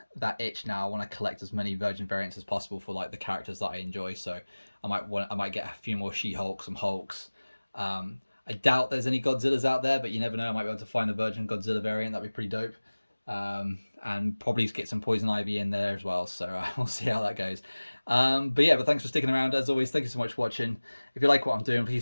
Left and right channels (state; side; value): inverted; both; correlation -1.00